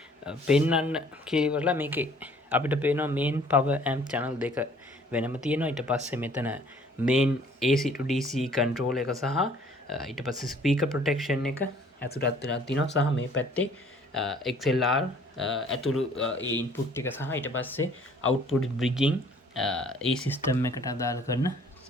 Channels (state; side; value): normal; both; correlation 0.56